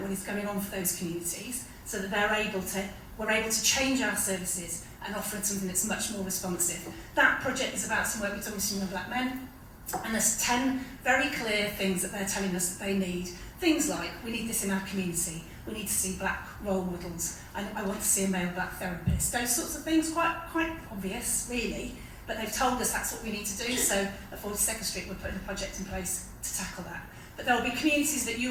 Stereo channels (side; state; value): both; identical; correlation 1.00